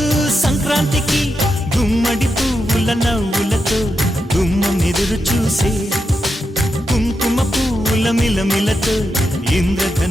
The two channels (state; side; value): normal; both; correlation 0.86